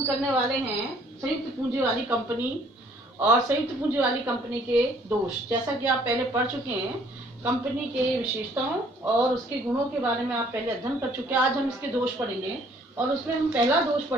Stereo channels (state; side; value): normal; both; correlation 0.60